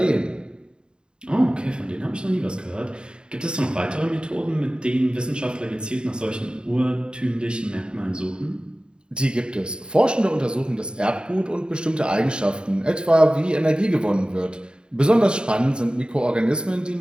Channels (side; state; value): left; late; 0.049 ms